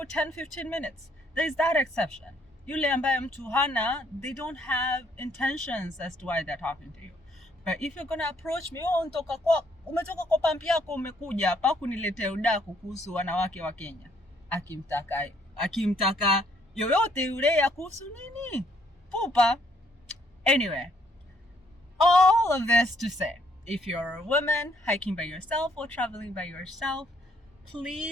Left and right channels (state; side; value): normal; both; correlation 0.68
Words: 10-15 minutes. There's that exception. Yule ambaye mtu hana, they don't have intentions as to why they're talking to you. But if you're gonna approach me, umetoka kwa pampi yako umekuja hapa kuniletea udaku kuhusu wanawake wa Kenya. Akimtaka yoyote yule ya kuhusu nini? Pupa. Anyway, all of this to say, if you're a woman hiking by yourself or traveling by yourself,